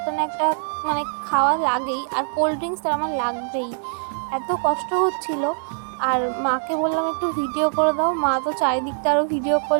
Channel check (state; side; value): silent; left; 63 dB below the other